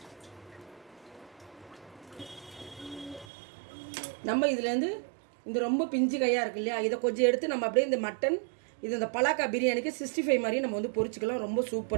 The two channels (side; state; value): left; drops out; at 3.2 s